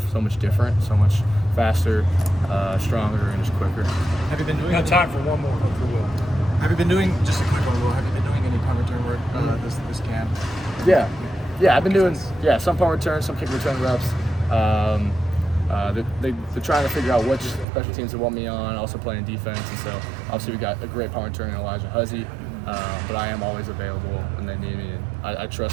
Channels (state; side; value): drops out; left; at 17.7 s